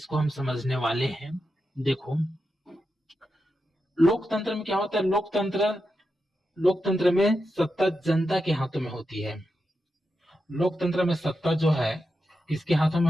हम समझने वाले हैं। देखो, लोकतंत्र में क्या होता है, लोकतंत्र में सत्ता जनता के हाथों में होती है। लोकतंत्र में सत्ता जो है किसके हाथों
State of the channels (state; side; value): normal; both; correlation 0.88